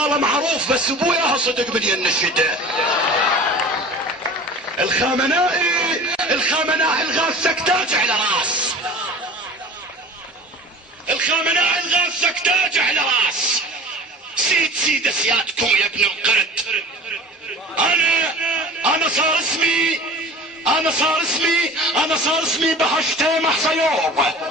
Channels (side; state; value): both; normal; correlation 0.40